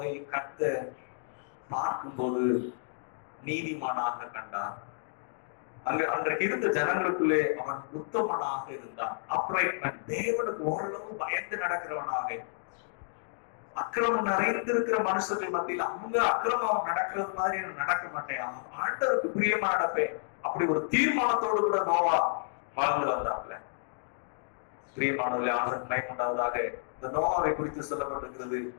கர்த்தர் பார்க்கும்போது நீதிமானாக கண்டார். அன்றைக்கு இருந்த ஜனங்களுக்குள்ளே அவன் உத்தமனாக இருந்தான். அப்ரைட்மென்ட், தேவனுக்கு ஓரளவு பயந்து நடக்கிறவனாக. அக்கிரமம் நிறைந்திருக்கிற மனுஷர்கள் மத்தியில் அவங்க அக்கிரமம் நடக்கிறது மாதிரி நடக்க மாட்டேன், ஆண்டவருக்கு பிரியமா நடப்பேன், அப்படி ஒரு தீர்மானத்தோடு கூட நோவா வாழ்ந்து வந்தாப்ல. பிரியமானவர்களே, ஆண்டவருக்கு மகிமையுண்டாவதாக. இந்த நோவாவை குறித்து சொல்லப்பட்டிருக்கிறது,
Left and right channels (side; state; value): right; silent; digital silence